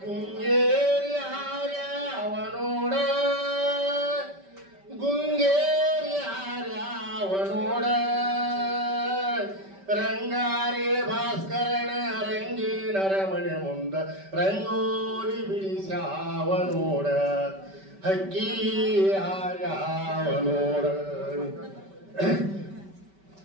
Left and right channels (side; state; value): left; late; 5.2 ms